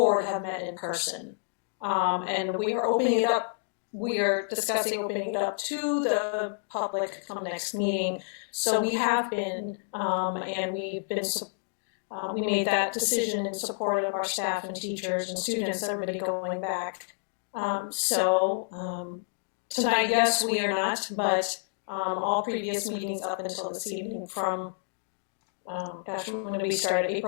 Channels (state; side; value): silent; right; digital silence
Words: have met in person. And we are opening it up. We are discussing opening it up to the public come next meeting. So we have been, and we've been, we made that decision in support of our staff and teachers and students, everybody going back. Tonight, yes, we are not, but all previous meetings up until this evening from, when did we start?